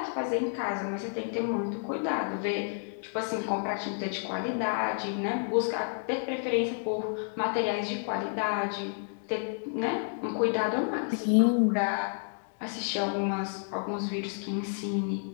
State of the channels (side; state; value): right; silent; digital silence